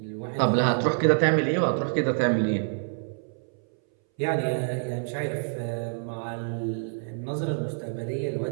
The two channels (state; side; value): silent; left; 60 dB below the other